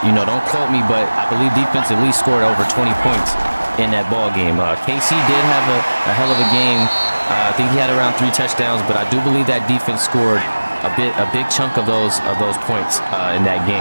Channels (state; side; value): inverted; both; correlation -1.00